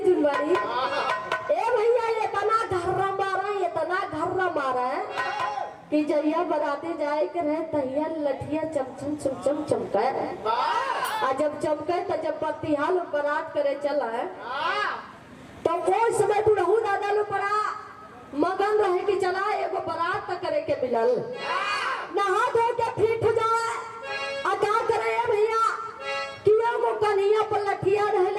जुनवारी ए भैया ये तना घर्रा मारा है कि जहिया बराते जाए के रहे तहिया लठिया चमचम चमचम चमका आ जब चमके तो जब बत्तीहाल बारात करे चला है तो वो समय बुढ़ऊ दादा लो पड़ा मगन रहे कि चला एगो बारात तक करे के मिलल नहा धो के फिट हो जाए आ क्या करे भैया कि एगो कन्हैया पर लठिया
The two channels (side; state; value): both; identical; correlation 1.00